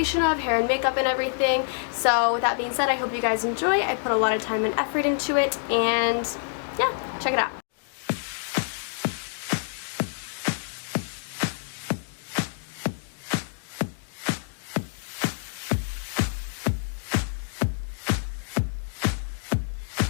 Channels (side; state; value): right; silent; 60 dB below the other